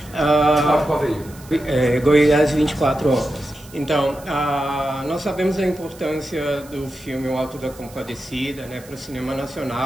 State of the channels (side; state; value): right; noise; hiss, 22 dB below the sound